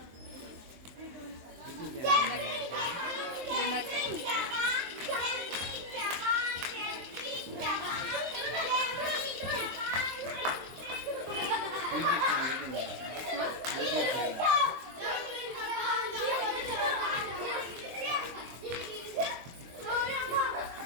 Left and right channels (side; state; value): left; late; 23 ms